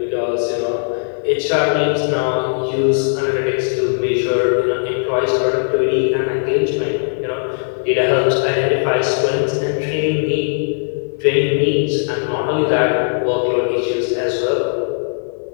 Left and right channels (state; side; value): silent; right; 64 dB below the other